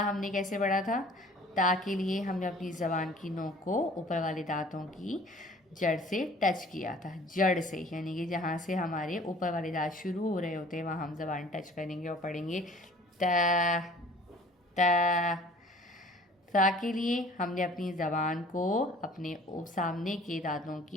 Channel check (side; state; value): both; normal; correlation 0.50